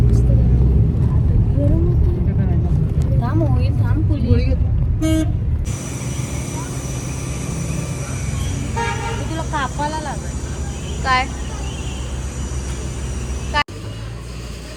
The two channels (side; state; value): both; identical; correlation 1.00